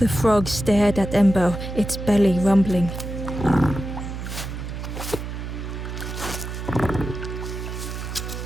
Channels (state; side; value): noise; right; hum, 7 dB below the sound